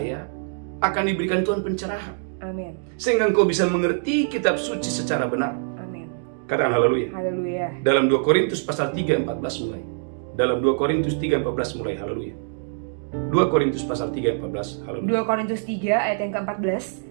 akan diberikan Tuhan pencerahan, Amin. sehingga engkau bisa mengerti kitab suci secara benar. Amin. Katakan haleluya. Haleluya. Dalam 2 Korintus pasal 3:14 mulai. Dalam 2 Korintus 3:14 mulai, haleluya. 2 Korintus pasal 3:14, haleluya. 2 Korintus 3 ayat yang ke-14,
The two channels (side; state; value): left; silent; digital silence